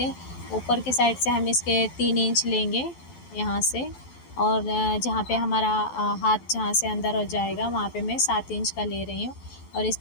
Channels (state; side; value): late; right; 12 ms